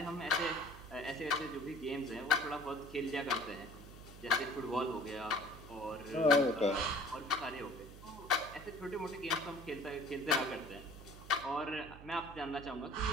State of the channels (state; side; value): noise; right; hum, 16 dB below the sound